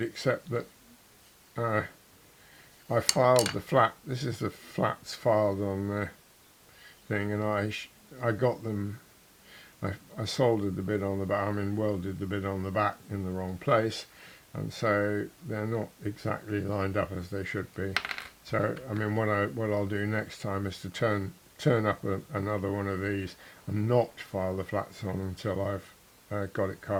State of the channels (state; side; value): identical; both; correlation 1.00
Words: that I filed the flat. This is the flats filed on the thing, and I got them. I soldered the bit on the back. I mean, welded the bit on the back in the wrong place, and so they're not exactly lined up as they should be. So I mean, what I'll do next time is to turn turn up another one of these and not file the flats on until I've got it